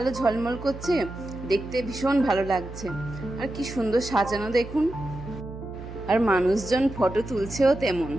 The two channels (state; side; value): noise; right; hum, 12 dB below the sound